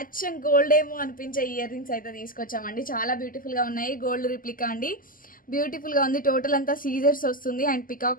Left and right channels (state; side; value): late; right; 0.41 ms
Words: అచ్చం గోల్డ్ ఏమో అనిపించే ఇయర్ రింగ్స్ అయితే తీసుకొచ్చామండి. చాలా బ్యూటిఫుల్గా ఉన్నాయి. గోల్డ్ రిప్లికా అండి. బ్యూటిఫుల్గా ఉంది. టోటల్ అంతా సీజర్స్ వస్తుంది అండ్